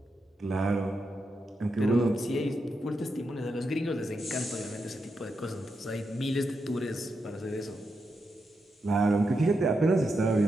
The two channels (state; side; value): normal; both; correlation 0.85